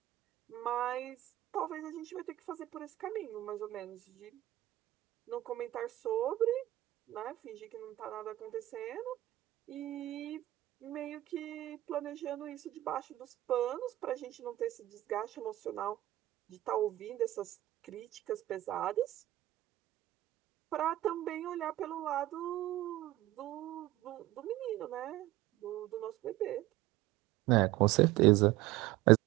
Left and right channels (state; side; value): quieter; left; 15.8 dB